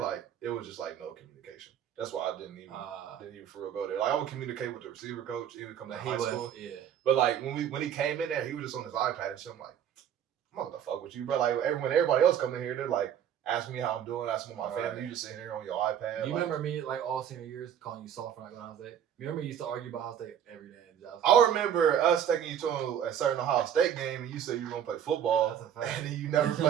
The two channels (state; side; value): quieter; left; 9.3 dB